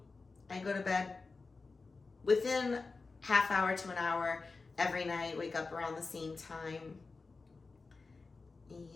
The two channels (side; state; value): right; quieter; 4.0 dB